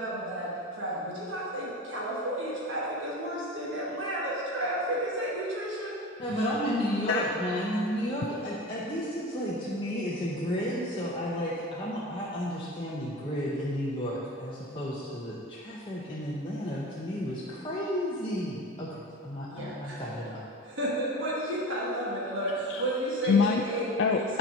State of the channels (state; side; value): normal; both; correlation 0.31